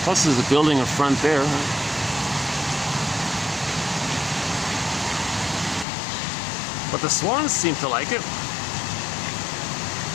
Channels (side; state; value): right; drops out; at 5.9 s